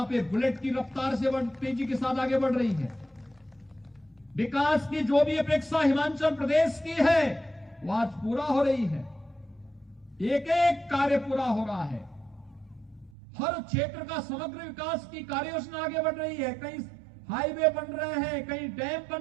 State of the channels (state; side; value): drops out; left; at 13.1 s